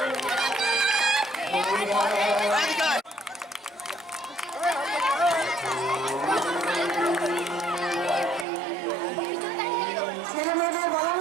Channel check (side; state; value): left; drops out; at 8.5 s